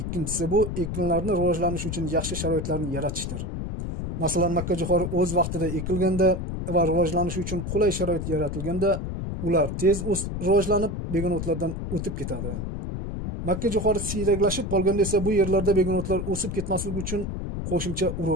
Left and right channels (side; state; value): left; noise; rumble, 4 dB below the sound